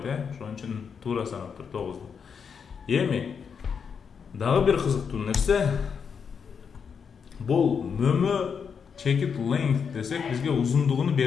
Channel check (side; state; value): right; quieter; 6.5 dB